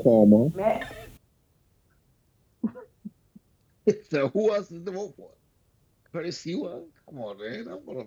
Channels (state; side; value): identical; both; correlation 1.00